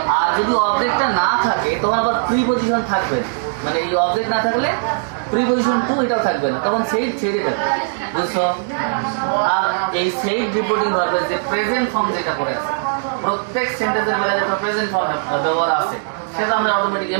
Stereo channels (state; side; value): silent; left; digital silence